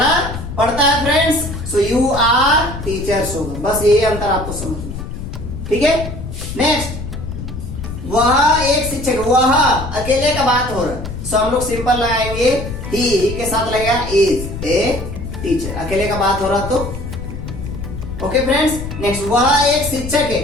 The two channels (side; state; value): left; noise; rumble, 8 dB below the sound